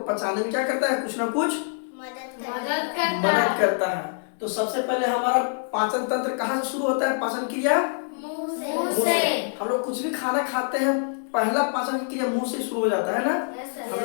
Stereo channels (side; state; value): right; silent; 60 dB below the other